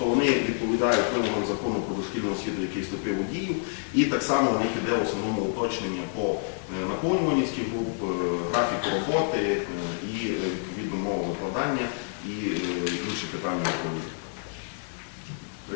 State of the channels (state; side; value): silent; right; 59 dB below the other